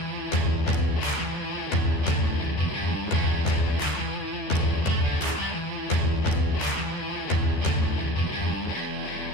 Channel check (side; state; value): right; late; 13 ms